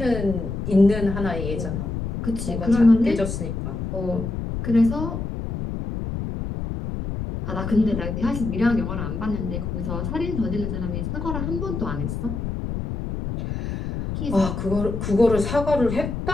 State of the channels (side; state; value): left; noise; rumble, 4 dB below the sound